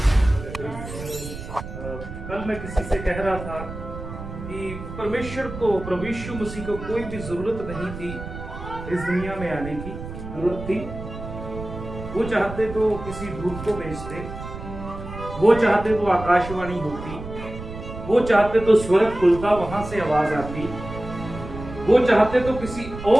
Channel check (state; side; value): noise; right; rumble, 10 dB below the sound